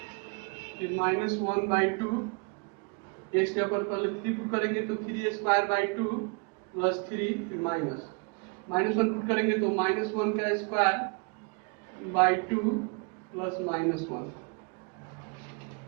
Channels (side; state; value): left; quieter; 33.9 dB